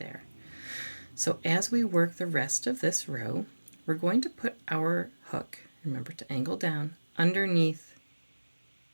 So as we work the rest of this row, we're going to put our hook, remember to angle down, underneath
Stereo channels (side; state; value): both; inverted; correlation -1.00